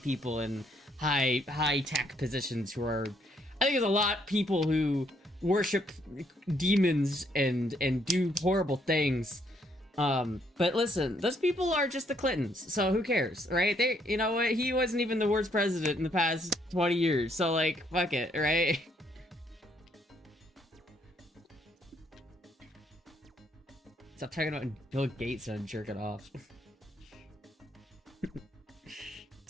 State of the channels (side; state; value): both; normal; correlation 0.70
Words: in high tech positions who are. I think there's a lot of people who worship demons and do horrible things. But listen, those people are just the Clintons, so who cares, right? You know what? He wasn't even the worst president in the past 20 years, so, like, fuck it, right? Stop talking about Bill Gates and jerk it off.